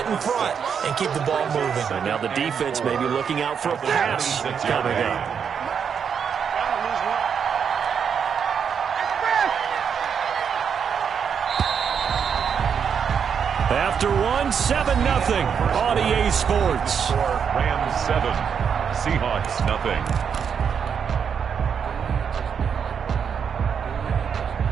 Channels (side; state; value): left; quieter; 7.1 dB